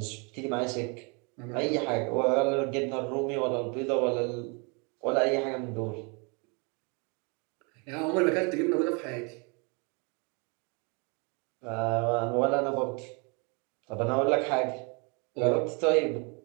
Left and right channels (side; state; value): left; quieter; 32.9 dB